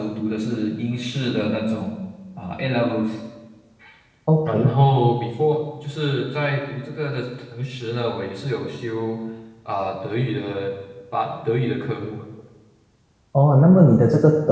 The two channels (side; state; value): both; identical; correlation 1.00